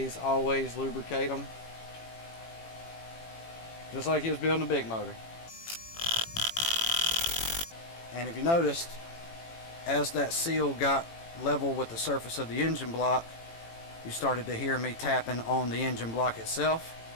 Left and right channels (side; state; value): right; late; 18 ms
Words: lubricate them, just like you was building a big motor. And if you noticed, as that seal got level with the surface of the engine block, you started to hear me tapping on the engine block itself.